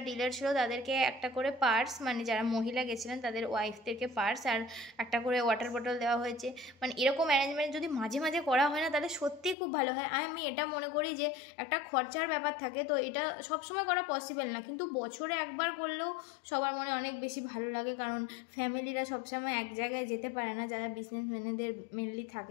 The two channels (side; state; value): right; drops out; at 9.6 s